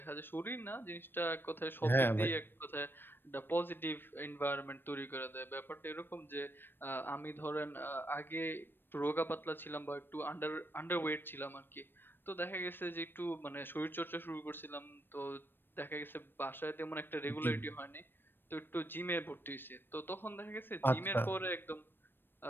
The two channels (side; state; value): right; late; 0.097 ms